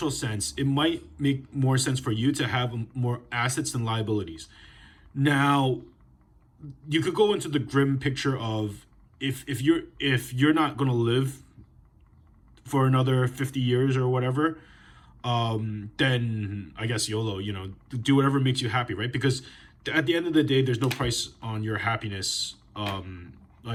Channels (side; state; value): both; identical; correlation 1.00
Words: sense, it might make more sense for you to have more assets than liabilities. Now, you could go into the grim picture of if you're not going to live for another 50 years or whatever, then I guess YOLO, do whatever makes you happy, right? Because at the end of the day, there's no price on your happiness,